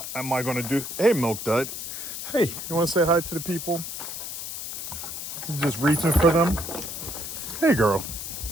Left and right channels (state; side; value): noise; left; hiss, 7 dB below the sound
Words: am I going to do? Hey, Milk Dud. Hey, you want to say hi to the people? You're just reaching for them. Hey, girl.